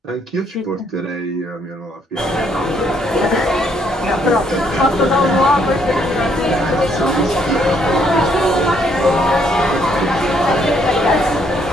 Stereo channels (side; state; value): both; normal; correlation 0.69